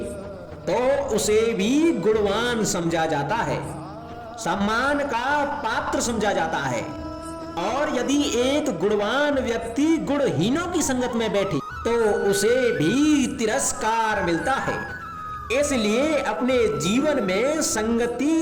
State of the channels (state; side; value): identical; both; correlation 1.00